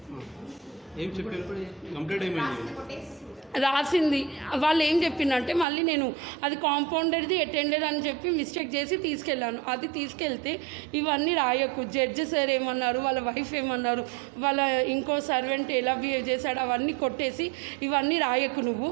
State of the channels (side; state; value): left; drops out; at 5.7 s